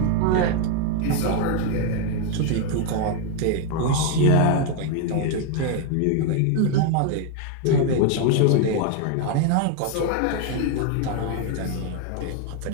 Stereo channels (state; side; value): different; both; correlation 0.01